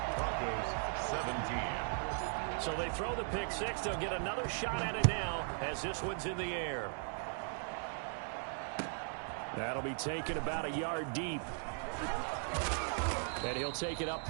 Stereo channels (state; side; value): silent; left; 52 dB below the other